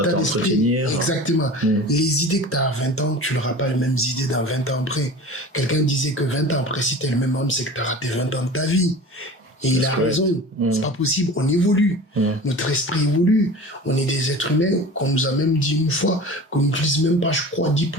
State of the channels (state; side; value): normal; both; correlation 0.37